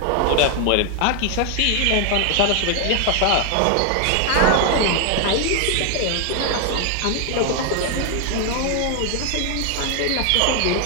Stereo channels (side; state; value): both; different; correlation 0.00